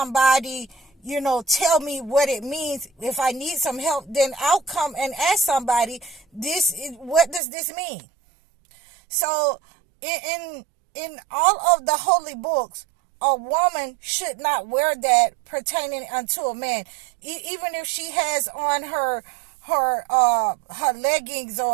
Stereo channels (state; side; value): drops out; left; at 7.4 s